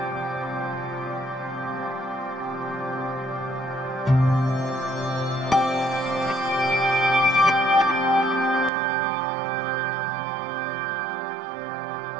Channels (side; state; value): left; drops out; at 8.7 s